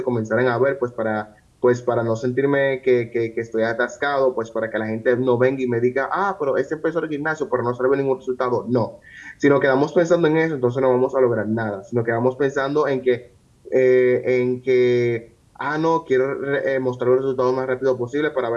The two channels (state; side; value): identical; both; correlation 1.00